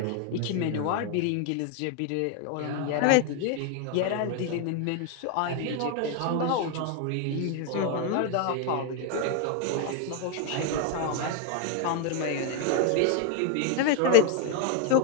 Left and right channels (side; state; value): both; different; correlation 0.01